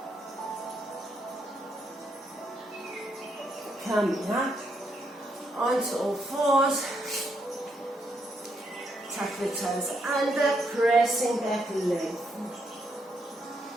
Coming up onto all fours. Tuck the toes under, pressing back length.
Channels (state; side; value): normal; both; correlation 0.77